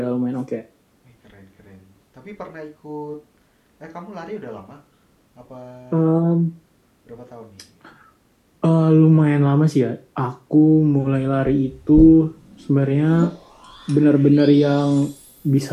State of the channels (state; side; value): identical; both; correlation 1.00